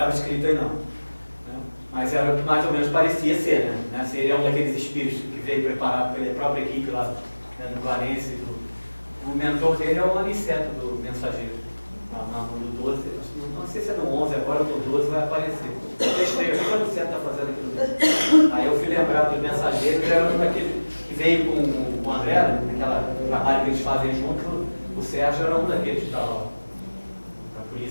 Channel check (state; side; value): inverted; both; correlation -1.00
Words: escrito aí não. Né? Mas era o que mais ou menos parecia ser. Né? Se ele é um daqueles espíritos que veio preparado pela própria equipe lá, né, do Clarence, o mentor dele é o Aniceto do Mensageiro. No 12, não sei se é no 11, agora no 12 vai aparecer. Eu testei, o que o Aniceto está fazendo aqui no 12? Aí eu fui lembrar dos Mensageiros, era um daquele que veio com o André, naquele trabalho que eles fazem junto. O Sérgio era um daqueles que estava lá. Então, por